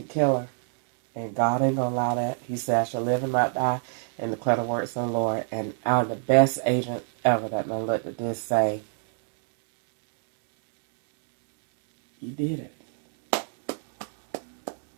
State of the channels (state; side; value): silent; left; 59 dB below the other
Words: kill her. And God ain't going to allow that. He said, I shall live and not die and declare the works of the Lord. And I'm the best agent ever that done looked at this say, you did it.